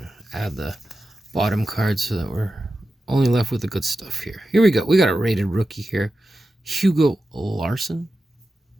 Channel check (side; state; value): both; normal; correlation 0.92